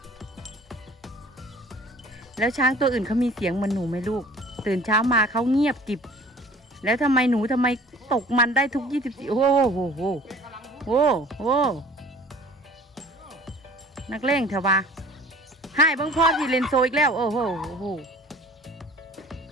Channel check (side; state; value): both; normal; correlation 0.49